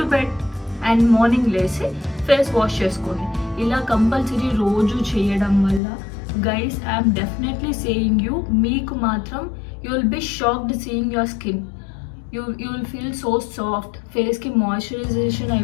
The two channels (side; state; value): right; drops out; at 5.8 s